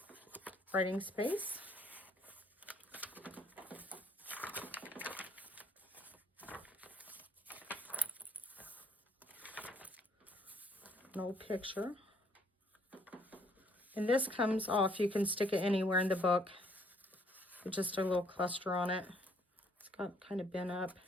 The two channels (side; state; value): both; normal; correlation 0.65